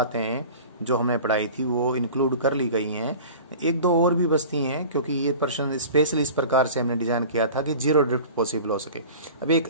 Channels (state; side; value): inverted; both; correlation -0.39